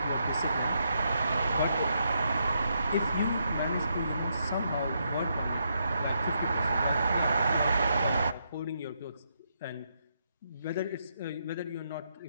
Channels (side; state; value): both; inverted; correlation -0.79